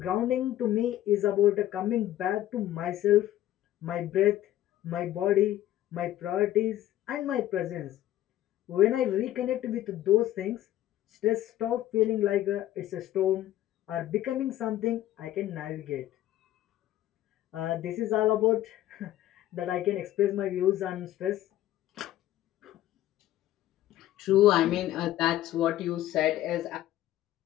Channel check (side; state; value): right; quieter; 13.6 dB